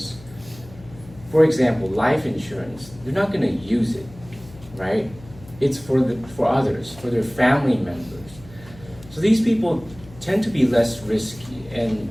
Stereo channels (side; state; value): left; noise; hum, 20 dB below the sound